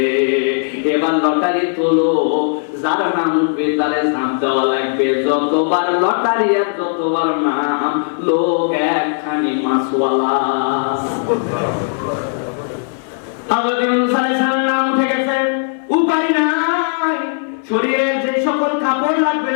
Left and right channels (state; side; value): silent; right; 59 dB below the other